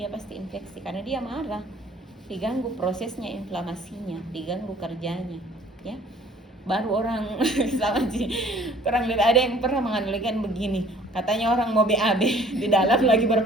pasti infeksi karena dia marah, diganggu prosesnya inflamasinya, diganggu kerjanya, ya. Baru orang sama sih, kurang lebih ada yang pernah menganalogikan begini, katanya orang mau BAB di dalam lagi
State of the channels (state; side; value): normal; both; correlation 0.54